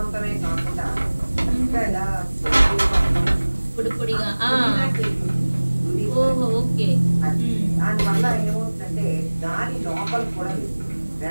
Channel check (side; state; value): both; inverted; correlation -1.00